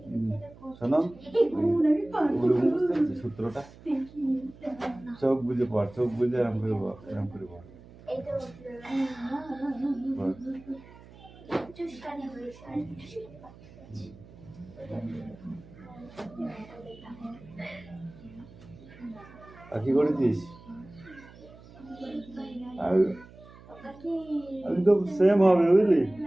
শোনো, সূত্রটা চোখ বুঝে পড়, চোখ বুঝে এরম করে বল, এরম করে বল। আর কি করেছিস? আমি তো সেম হবে বুঝলি,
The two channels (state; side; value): noise; right; hum, 21 dB below the sound